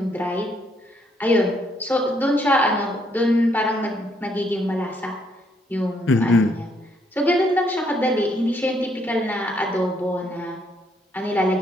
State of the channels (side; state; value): both; normal; correlation 0.71